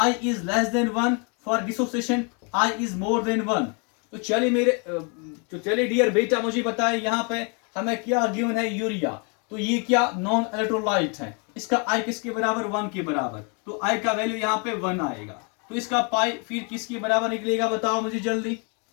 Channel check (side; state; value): right; quieter; 35.5 dB